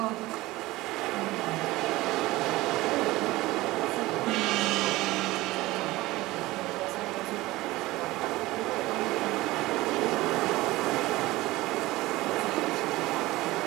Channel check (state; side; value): quieter; left; 18.9 dB